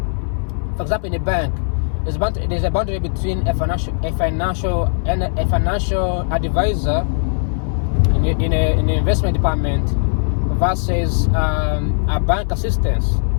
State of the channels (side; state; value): right; silent; 58 dB below the other